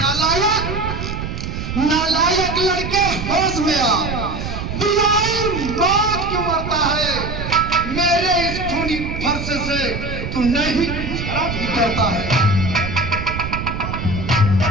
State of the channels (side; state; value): right; noise; rumble, 5 dB below the sound